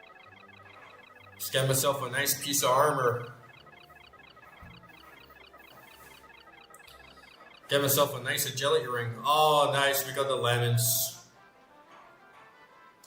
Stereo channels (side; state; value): both; identical; correlation 1.00